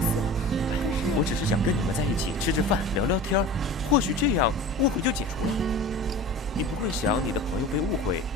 思，可是我只是想跟你们在一起吃吃饭，聊聊天，或许这样误会就解除了。你不会想你的朋友被误会，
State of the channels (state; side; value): normal; both; correlation 0.36